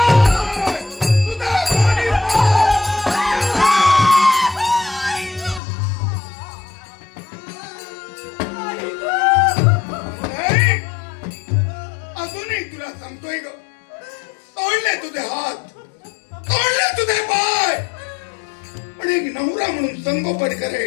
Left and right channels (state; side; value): drops out; right; at 5.6 s